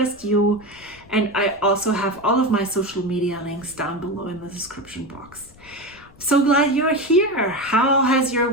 you. And I also have all of my social media links down below in the description box. So glad you're here. How has your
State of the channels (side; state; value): left; noise; rumble, 25 dB below the sound